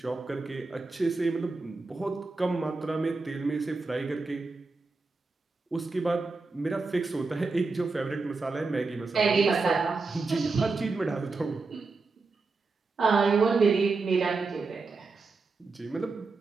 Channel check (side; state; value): left; quieter; 4.0 dB